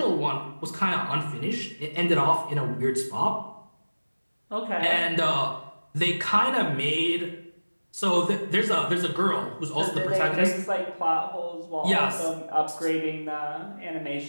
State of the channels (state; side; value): inverted; both; correlation -1.00